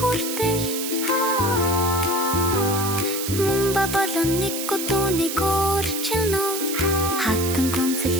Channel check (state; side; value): noise; right; hiss, 5 dB below the sound